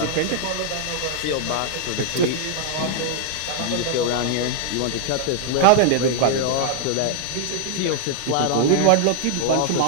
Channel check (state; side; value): different; both; correlation 0.00